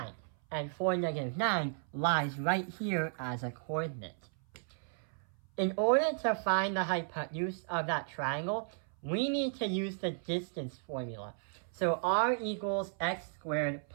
And 4, -9 lies right here as a coordinate. In order to find the hypotenuse of that triangle, we need to use the distance formula. So r equals x squared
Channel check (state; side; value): silent; left; 55 dB below the other